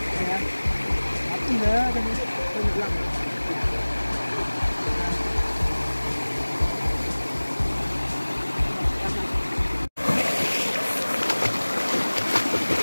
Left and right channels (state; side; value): inverted; both; correlation -1.00